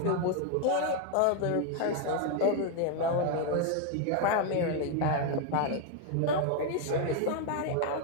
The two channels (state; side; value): different; both; correlation 0.01